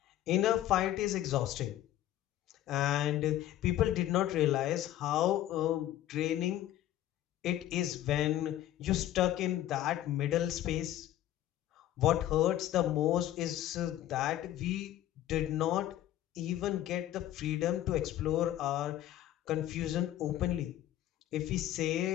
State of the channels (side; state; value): right; quieter; 13.1 dB